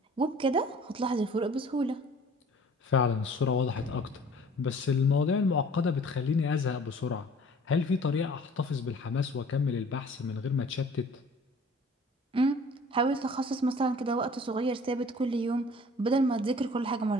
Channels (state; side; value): normal; both; correlation 0.50